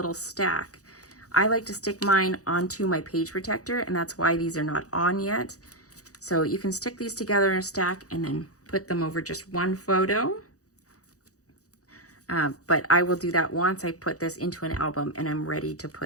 stack. I like to stick mine onto my page protector, and that's why these are not on yet. So you can stick these together in a stack and then put them over just one photo. But I will do that once I put this into an album and I'm ready to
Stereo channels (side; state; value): right; late; 0.66 ms